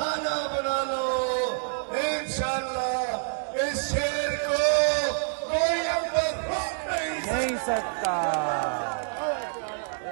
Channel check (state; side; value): silent; left; digital silence